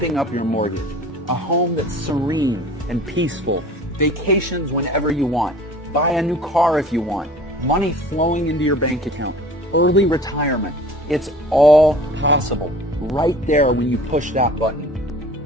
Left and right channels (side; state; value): both; normal; correlation 0.45